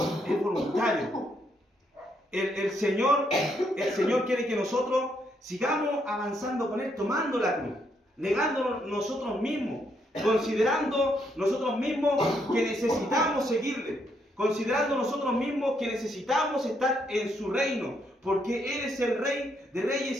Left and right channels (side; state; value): both; normal; correlation 0.75